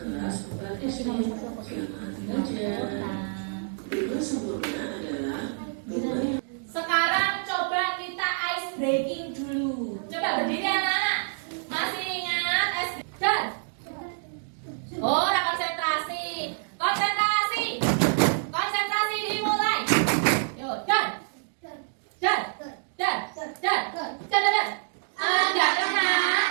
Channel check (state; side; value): silent; left; digital silence